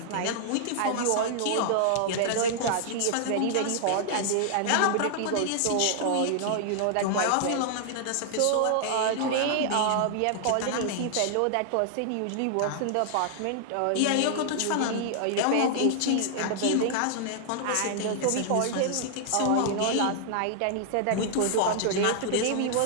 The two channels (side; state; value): both; different; correlation 0.00